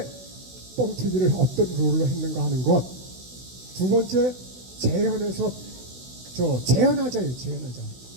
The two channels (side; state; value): left; late; 16 ms